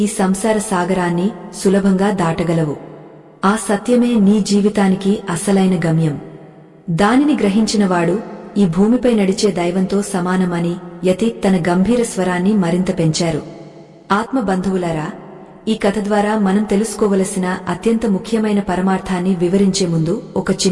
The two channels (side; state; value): both; identical; correlation 1.00